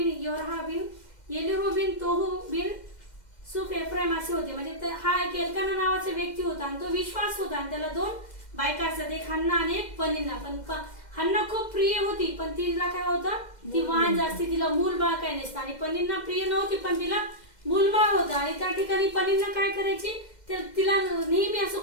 योरहा बिन येलिहू बिन तोहू बिन सुफ एफ्राईम असे होते. म्हणजे हा एक एल्काना नावाचा व्यक्ती होता आणि तो विश्वास होता आणि त्याला 2 बायका असतात, एक हन्ना आणि एक पनिन्ना. पण हन्ना खूप प्रिय होती पण तिला काय होतं, ती वाहन जास्ती, तिला मूल बाळ काही नसतं. आणि पनिन्ना प्रिय नव्हती पण तिला मूलबाळ होतं. आणि त्या ठिकाणी पनिन्ना काय करायची, तिला नेहमी असं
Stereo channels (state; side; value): late; right; 2.1 ms